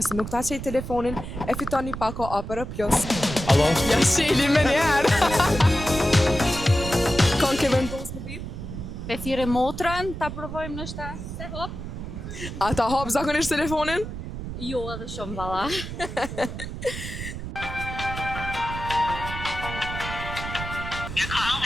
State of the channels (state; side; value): noise; right; rumble, 8 dB below the sound